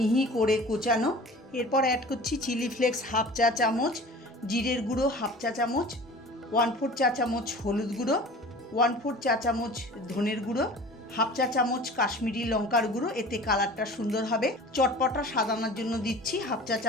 করে কোচানো। এরপর অ্যাড করছি চিলি ফ্লেক্স হাফ চা চামচ, জিরের গুঁড়ো হাফ চা চামচ, 1/4 চা চামচ হলুদ গুঁড়ো, 1/4 চা চামচ ধনের গুঁড়ো, হাফ চা চামচ কাশ্মীরি লঙ্কার গুঁড়ো, এতে কালারটা সুন্দর হবে। চটপটা সাজানোর জন্য দিচ্ছি হাফ চা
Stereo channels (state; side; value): normal; both; correlation 0.41